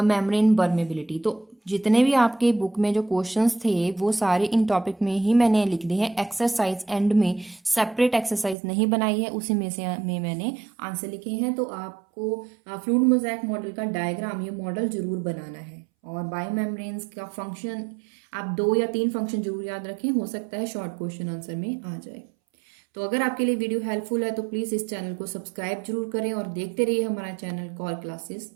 membrane permeability. तो जितने भी आपके बुक में जो क्वेश्चंस थे वो सारे इन टॉपिक में ही मैंने लिख दिए हैं। एक्सरसाइज एंड में सेपरेट एक्सरसाइज नहीं बनाई है, उसी में से मैंने आंसर लिखे हैं। तो आपको फ्लूइड मोज़ेक मॉडल का डायग्राम, ये मॉडल जरूर बनाना है। और बायोमेम्ब्रेन्स का फंक्शन आप 2 या 3 फंक्शन जरूर याद रखें, हो सकता है शॉर्ट क्वेश्चन आंसर में आ जाए। तो अगर आपके लिए वीडियो हेल्पफुल है तो प्लीज़ इस चैनल को सब्सक्राइब जरूर करें और देखते रहिए हमारा channel call classes.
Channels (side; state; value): left; drops out; at 8.6 s